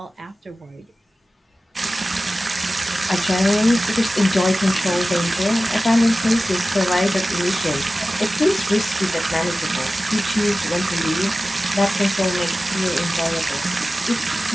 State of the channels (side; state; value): both; normal; correlation 0.95